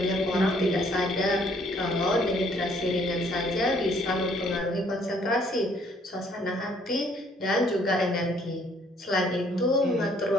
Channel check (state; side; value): normal; both; correlation 0.64